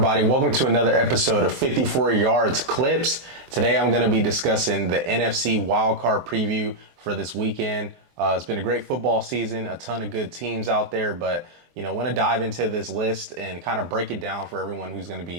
Welcome to another episode of 54 Yards Clips. Today I'm going to be discussing the NFC Wildcard preview for this weekend. It's been a great football season, a ton of good teams out there, but I want to dive into this list and kind of break it down for everyone who's going to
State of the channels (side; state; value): left; late; 23 ms